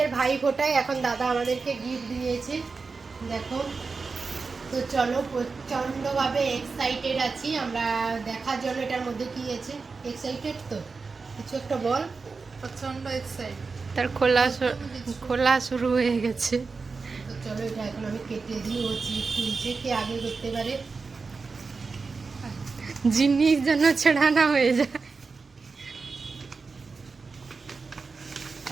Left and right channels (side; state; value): left; quieter; 4.5 dB